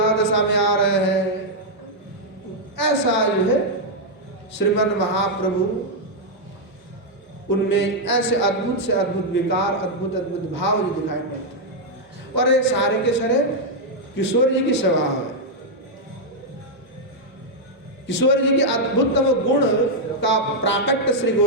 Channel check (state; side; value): normal; both; correlation -0.02